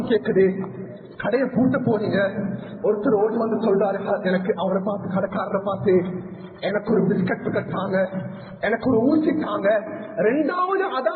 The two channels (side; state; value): both; identical; correlation 1.00